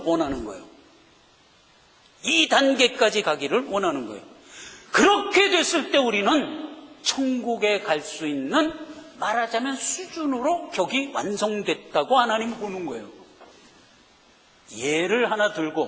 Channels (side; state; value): both; identical; correlation 1.00